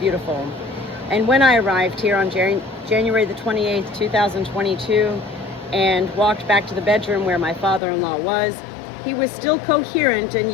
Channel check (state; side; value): drops out; right; at 7.8 s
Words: And when I arrived here on January the 28th, 2022, and walked back to the bedroom where my father-in-law was, he was still coherent and